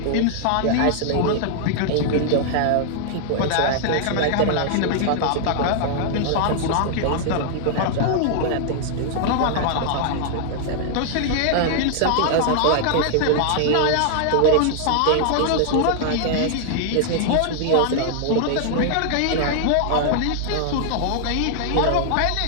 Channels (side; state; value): both; different; correlation 0.00